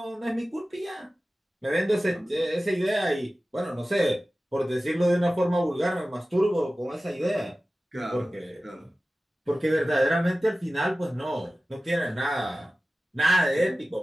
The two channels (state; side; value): normal; both; correlation 0.96